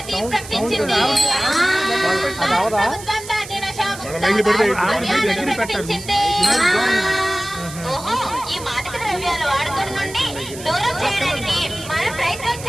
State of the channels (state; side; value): noise; right; hiss, 14 dB below the sound